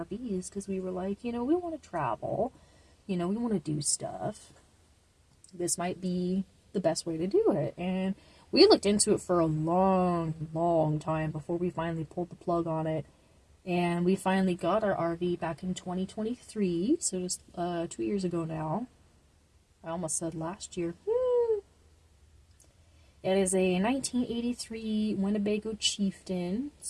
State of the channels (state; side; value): identical; both; correlation 1.00